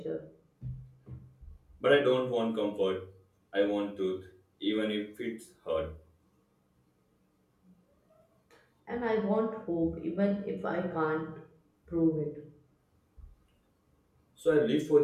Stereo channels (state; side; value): identical; both; correlation 1.00